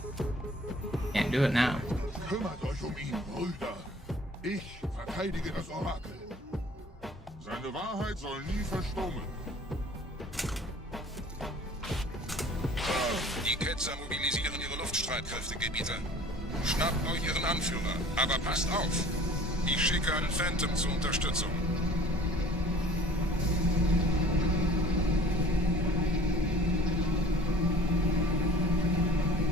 Can't do it now. Kümmert euch ihn, Brüder. Ich verteidige das Orakel. Seine Wahrheit soll nie verstummen. Die Ketzer mobilisieren ihre Luftstreitkräfte, Gebieter. Schnappt euch ihren Anführer, aber passt auf. Ich schicke einen Phantom zur Unterstützung.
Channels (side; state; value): both; normal; correlation 0.48